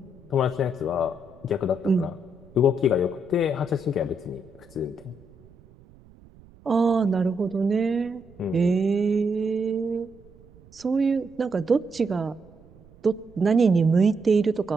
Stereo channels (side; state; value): right; noise; rumble, 25 dB below the sound